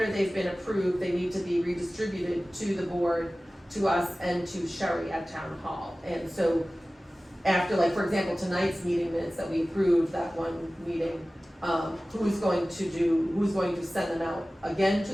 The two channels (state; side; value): normal; both; correlation 0.97